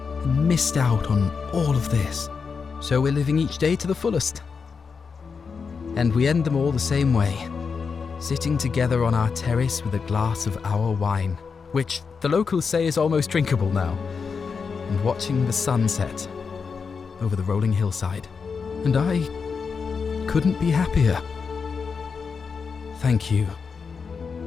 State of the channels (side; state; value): right; quieter; 5.5 dB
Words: missed out on all of this. So we're living each day to the fullest. And we end them all the same way, sitting together on our terrace with a glass of our wine, which the locals say is almost drinkable now, and watching the sunset over the rolling hillside. And I couldn't be happier. Thank you.